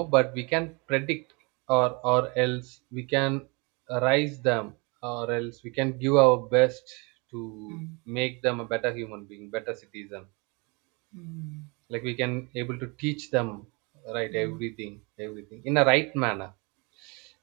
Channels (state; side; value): quieter; left; 29.8 dB